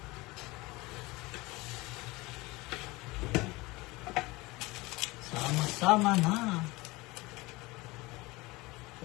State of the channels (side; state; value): right; quieter; 22.3 dB